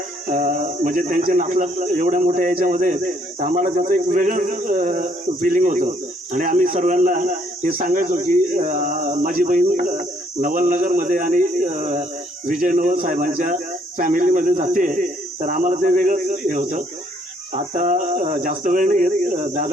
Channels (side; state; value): both; normal; correlation 0.67